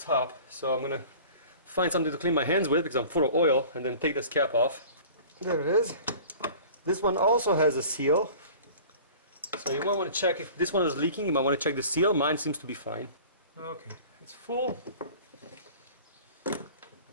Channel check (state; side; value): inverted; both; correlation -0.44